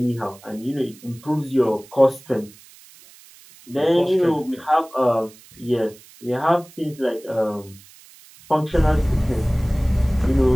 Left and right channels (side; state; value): right; noise; hiss, 24 dB below the sound